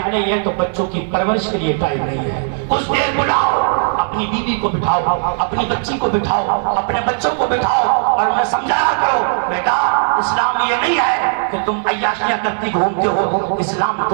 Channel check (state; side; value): silent; left; digital silence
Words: نہیں ہے تو بچوں کی پرورش کے لیے ٹائم نہیں ہے۔ کچھ دیر بلاؤ، اپنی بیوی کو بٹھاؤ، اپنی بچی کو بٹھاؤ، اپنے بچوں کو بٹھاؤ اور انہیں سمجھایا کرو، بیٹا اسلام یہ نہیں ہے کہ تم عیاشیاں کرتی گھومتے ہو، اسلام